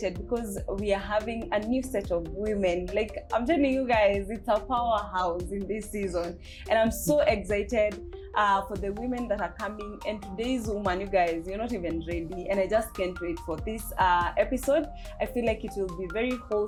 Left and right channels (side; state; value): both; identical; correlation 1.00